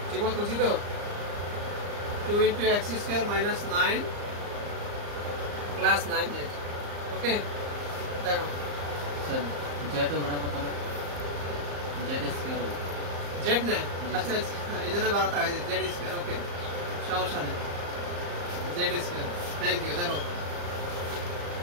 ঠিক মতো বুঝি তো? 2 × x² - 9 প্লাস 9z। ওকে, দেখো স্যার জেড হবে না কত না জেড স্কয়ার হবে জেড না। আচ্ছা আচ্ছা, এই জন্য বাড়াতে হয় জেড স্কয়ার। ওকে, সমস্যা নেই, জেড স্কয়ার। Thank you. দেখো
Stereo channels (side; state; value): left; late; 34 ms